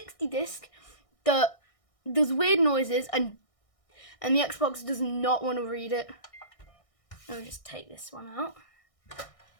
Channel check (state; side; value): late; right; 1.6 ms